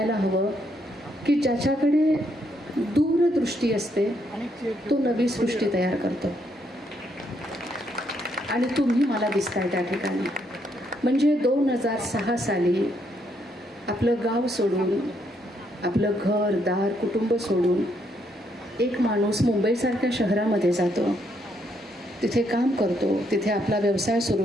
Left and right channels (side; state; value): both; normal; correlation 0.74